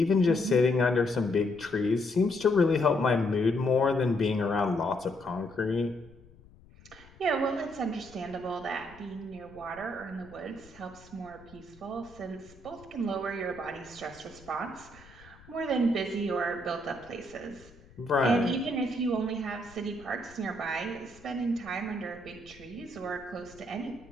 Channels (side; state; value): left; noise; rumble, 23 dB below the sound